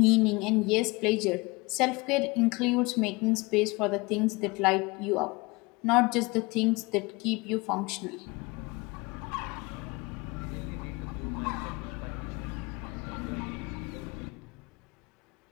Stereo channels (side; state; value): right; quieter; 25.0 dB